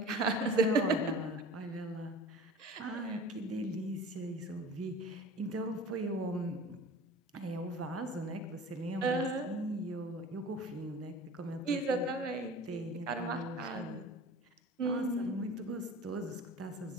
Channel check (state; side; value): normal; both; correlation 0.41